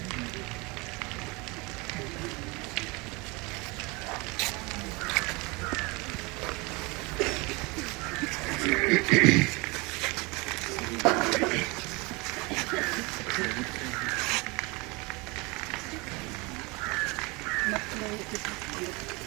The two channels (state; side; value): quieter; left; 26.3 dB